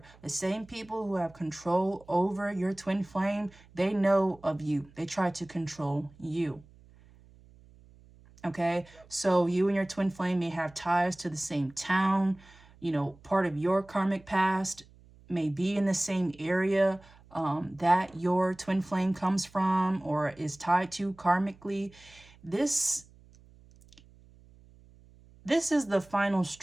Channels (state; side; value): noise; right; hum, 25 dB below the sound